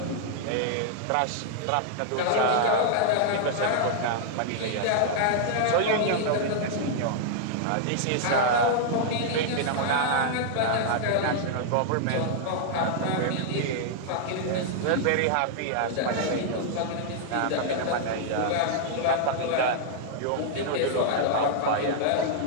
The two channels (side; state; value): both; different; correlation -0.01